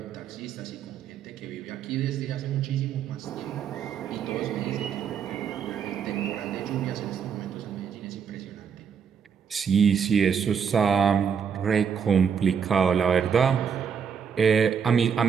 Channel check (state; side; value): quieter; left; 7.0 dB